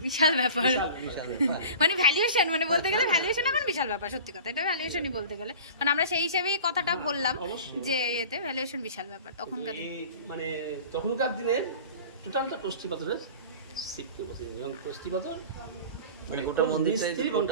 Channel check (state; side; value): inverted; both; correlation -0.40